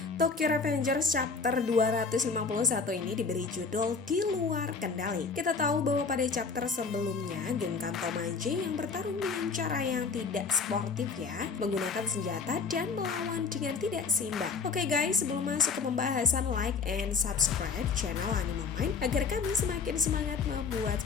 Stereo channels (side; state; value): right; quieter; 4.9 dB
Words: Tokyo Revengers chapter 251 ini diberi judul Di Luar Kendali. Kita tahu bahwa pada chapter sebelumnya, geng Kantomaji yang bertarung dengan cara yang tidak sportif ya, menggunakan senjata dan melawan dengan tidak seimbang. Oke guys, sebelum masuk ke pembahasan, like and subscribe channel Animal Mind agar kami semakin semangat membuat